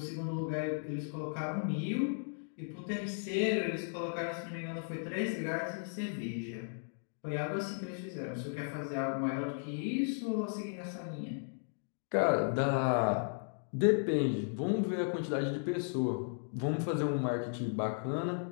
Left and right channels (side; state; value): right; silent; digital silence